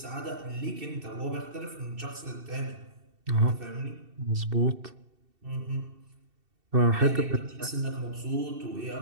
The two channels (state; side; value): late; left; 2.7 ms